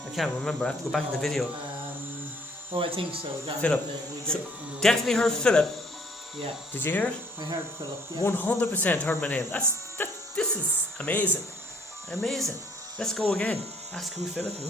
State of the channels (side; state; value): both; normal; correlation 0.62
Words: can't remember. I have to go back in the video. I think so. Philip. So, definitely heard Philip. Yeah. Did you hear it? I heard Philip. Yeah. 100% heard my name. This is amazing. Amazing. Let's go again. Ask who's Philip and